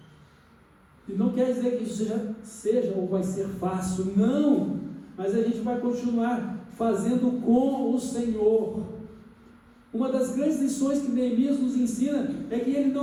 E não quer dizer que isso seja ou vai ser fácil, não. Mas a gente vai continuar fazendo com o Senhor. Uma das grandes lições que Neemias nos ensina é que ele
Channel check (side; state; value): both; identical; correlation 1.00